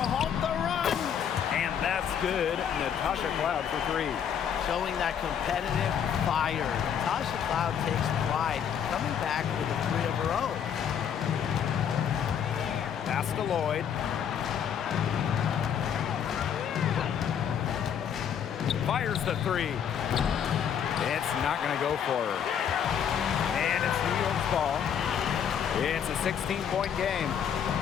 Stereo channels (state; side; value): quieter; right; 8.3 dB